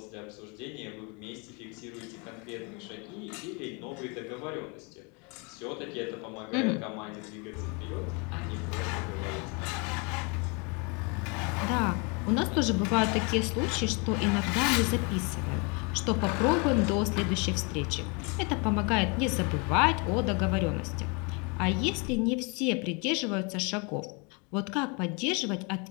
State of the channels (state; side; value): quieter; right; 32.2 dB